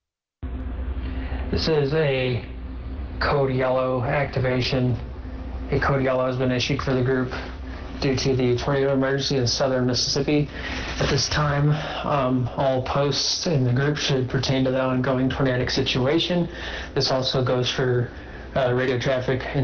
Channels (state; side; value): identical; both; correlation 1.00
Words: This is a code yellow activation. A code yellow has been issued for the group. due to the tornado emergency in southern Mississippi. At this time, all posts in the group should pertain to the ongoing tornadic situation. This also goes for radio traffic